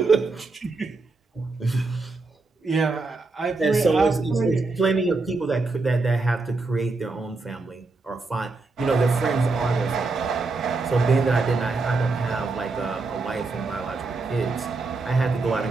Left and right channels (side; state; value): left; quieter; 3.7 dB